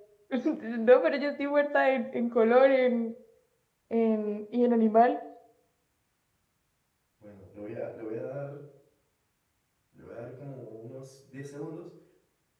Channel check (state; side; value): identical; both; correlation 1.00